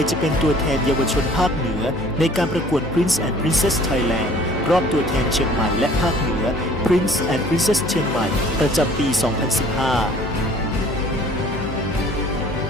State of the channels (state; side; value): noise; left; hum, 8 dB below the sound